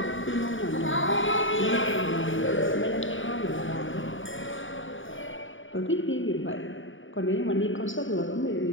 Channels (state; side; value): late; right; 0.57 ms